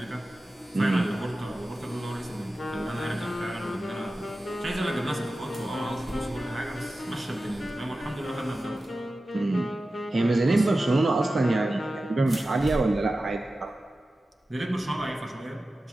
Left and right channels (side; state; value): both; normal; correlation 0.94